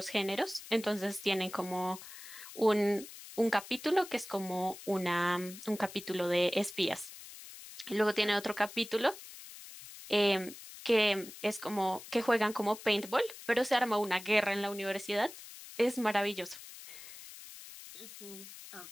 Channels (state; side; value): noise; left; hiss, 15 dB below the sound